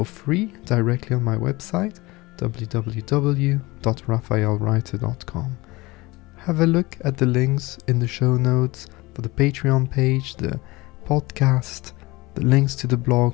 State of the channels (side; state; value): right; quieter; 22.0 dB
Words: free directly on my website, www.raphaelreiter.com. Have a look at the links in the show notes for the Patreon page, the podcast, the links to the